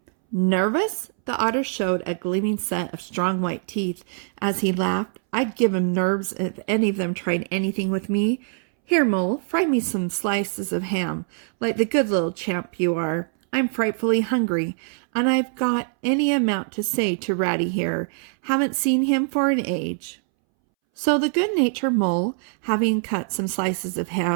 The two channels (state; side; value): silent; left; 63 dB below the other